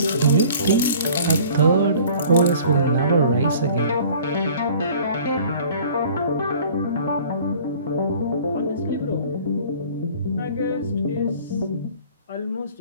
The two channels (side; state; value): both; inverted; correlation -0.49